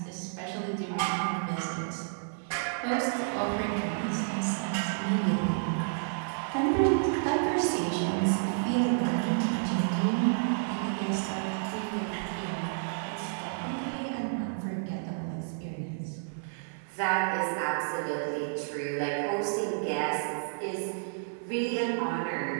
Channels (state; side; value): silent; left; digital silence